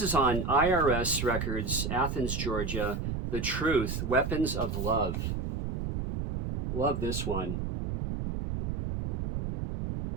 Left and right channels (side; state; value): right; noise; rumble, 2 dB below the sound